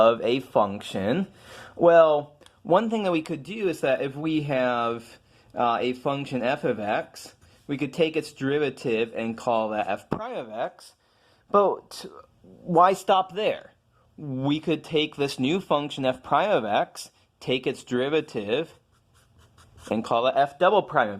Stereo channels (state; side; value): identical; both; correlation 1.00